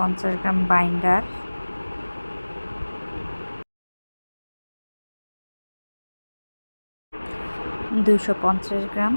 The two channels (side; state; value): both; inverted; correlation -1.00